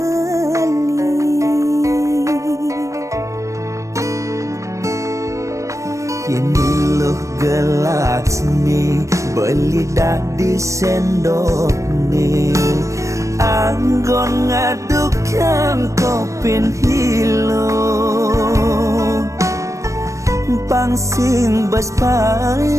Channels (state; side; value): late; left; 0.15 ms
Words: Ini loh gelas nih beli dah di sendok nih anggon ngadukan kopin hilo pangsing bas